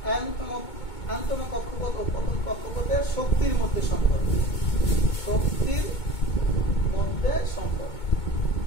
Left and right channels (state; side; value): late; right; 2.2 ms